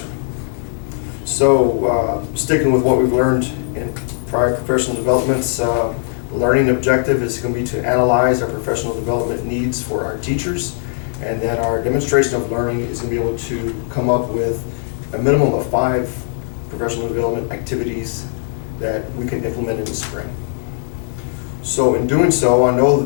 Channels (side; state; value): right; silent; digital silence